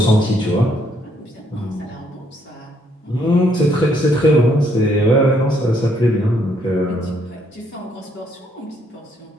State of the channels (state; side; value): normal; both; correlation 0.70